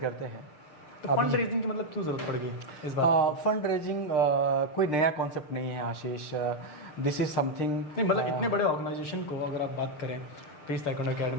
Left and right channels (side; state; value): right; late; 6.7 ms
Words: हैं। तो फंड रेजिंग की मतलब क्यों जरूरत पड़ गई इस बार? फंड रेजिंग कोई नया कॉन्सेप्ट नहीं है आशीष। दिस इज समथिंग नहीं, मतलब इतने बड़े ऑर्गेनाइजेशन को अगर आप बात करें पीस ताइक्वांडो